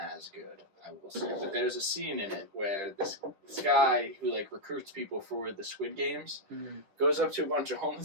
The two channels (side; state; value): left; late; 10 ms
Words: as good, I will say. But there's a scene in it where this guy who like recruits people for the Squid Games goes up to a bunch of